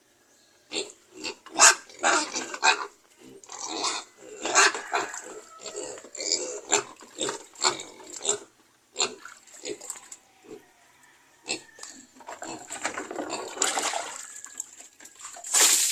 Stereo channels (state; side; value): identical; both; correlation 1.00